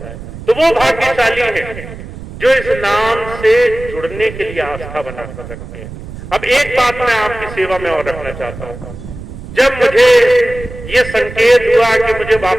तो वो भाग्यशाली है जो इस नाम से जुड़ने के लिए आस्था बना कर सकते हैं। अब एक बात मैं आपकी सेवा में और रखना चाहता हूं। जब मुझे ये संकेत हुआ कि मुझे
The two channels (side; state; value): right; noise; rumble, 12 dB below the sound